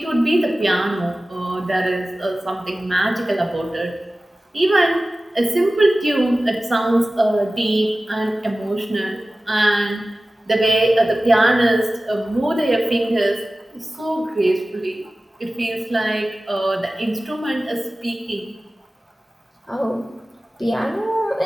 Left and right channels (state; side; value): normal; both; correlation 0.96